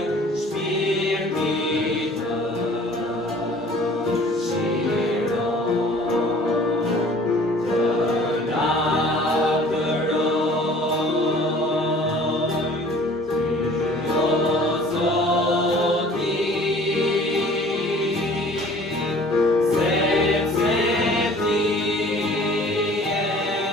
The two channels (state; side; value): normal; both; correlation 0.50